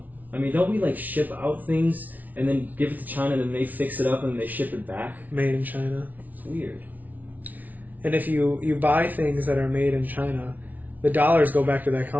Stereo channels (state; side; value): late; left; 0.077 ms